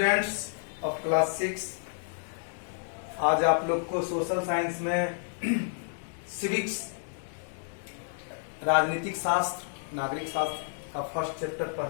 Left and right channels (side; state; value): right; silent; 58 dB below the other